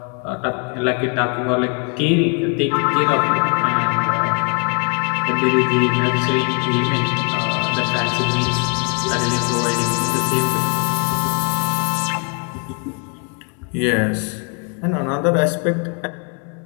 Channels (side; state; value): right; quieter; 35.7 dB